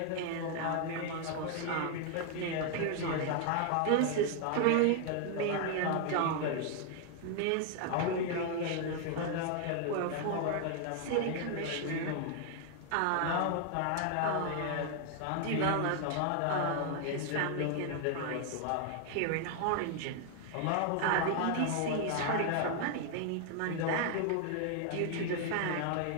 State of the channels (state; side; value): different; both; correlation 0.00